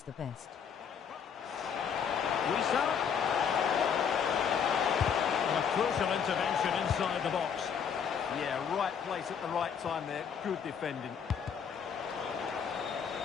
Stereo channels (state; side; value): quieter; right; 7.2 dB